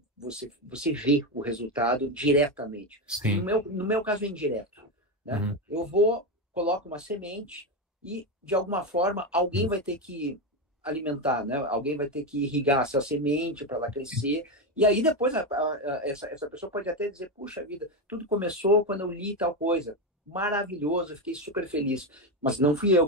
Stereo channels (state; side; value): normal; both; correlation 0.12